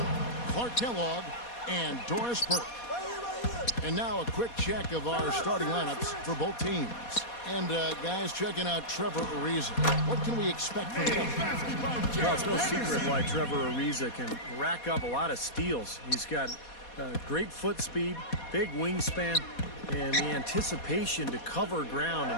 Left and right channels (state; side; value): late; right; 4.2 ms